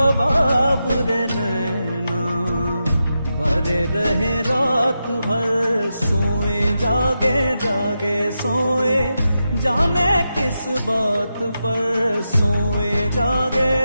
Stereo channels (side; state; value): both; inverted; correlation -0.88